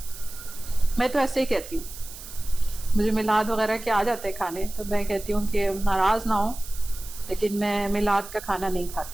मैं तो ऐसे ही कहती हूँ। मुझे मिलाद वगैरह के आ जाते हैं खाने, तो मैं कहती हूँ कि नाराज़ ना हो, लेकिन मैं मिलाद का खाना नहीं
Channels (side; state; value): right; noise; hiss, 14 dB below the sound